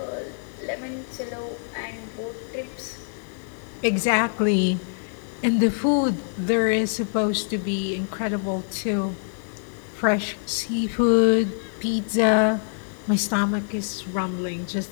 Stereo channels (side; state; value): right; silent; digital silence